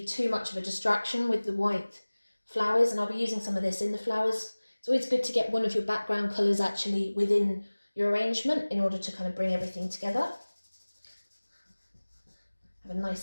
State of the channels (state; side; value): inverted; both; correlation -1.00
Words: too much of a distraction with the white flowers, and I'll be using some of this in the flowers. It's always good to get one of your background colours actually within your arrangement in order to kind of bring everything together. Have a